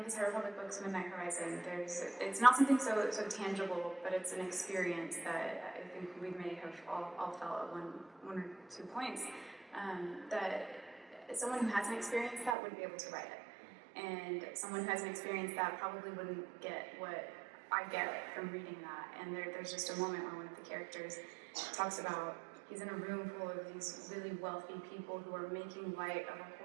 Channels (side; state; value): left; drops out; at 12.6 s